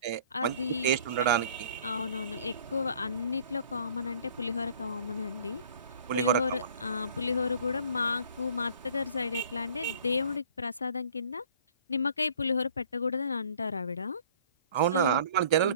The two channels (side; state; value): both; inverted; correlation -0.53